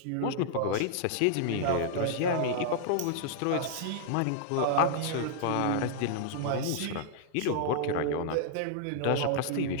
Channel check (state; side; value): different; both; correlation -0.01